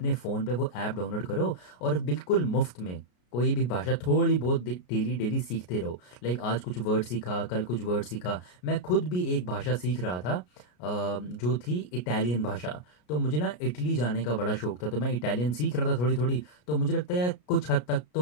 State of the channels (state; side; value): late; right; 33 ms